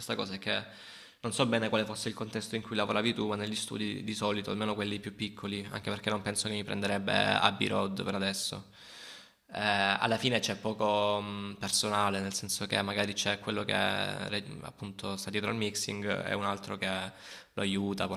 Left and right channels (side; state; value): both; identical; correlation 1.00